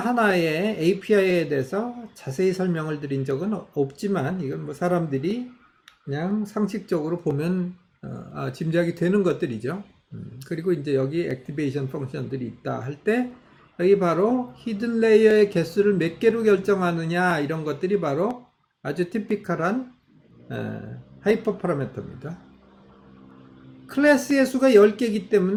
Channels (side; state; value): both; identical; correlation 1.00